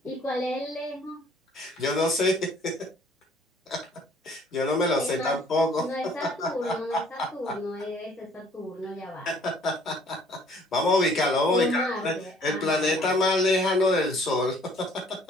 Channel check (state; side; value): normal; both; correlation 0.58